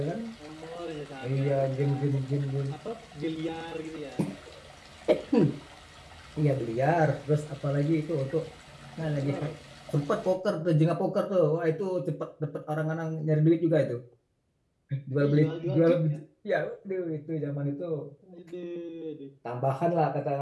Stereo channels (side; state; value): both; identical; correlation 1.00